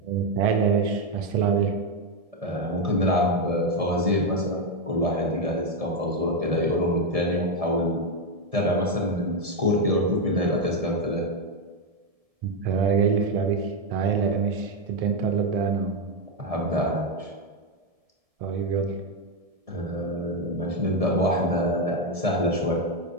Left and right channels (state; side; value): late; left; 1.7 ms